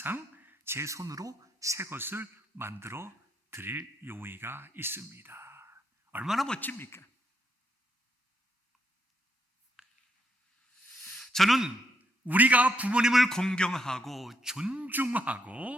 제 손으로 새 것을 만들어 드릴 용의가 있습니다. 얼마나 멋집니까? 저는 우리가 부모님을 공경하고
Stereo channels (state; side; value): normal; both; correlation 0.76